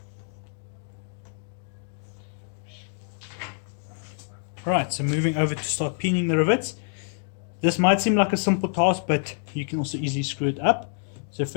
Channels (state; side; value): silent; right; 60 dB below the other